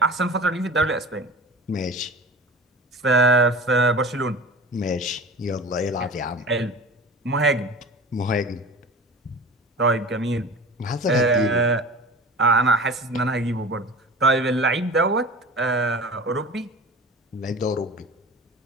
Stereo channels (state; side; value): normal; both; correlation 0.36